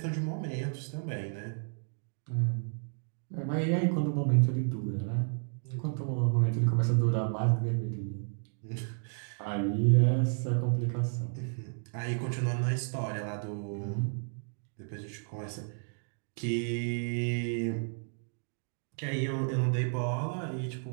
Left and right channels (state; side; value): silent; left; 56 dB below the other